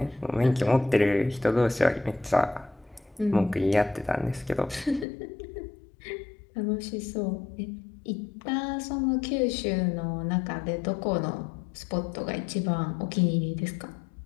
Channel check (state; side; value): drops out; right; at 5.1 s